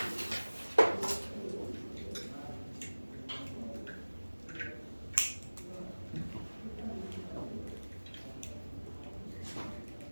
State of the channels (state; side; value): inverted; both; correlation -1.00